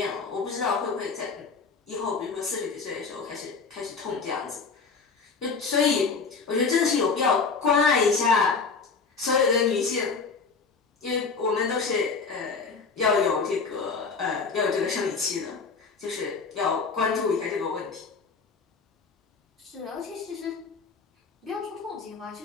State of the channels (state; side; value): quieter; right; 4.9 dB